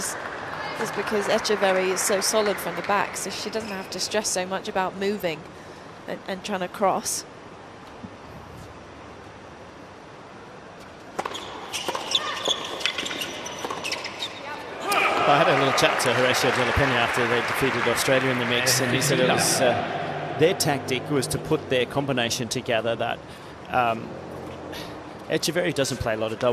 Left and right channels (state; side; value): identical; both; correlation 1.00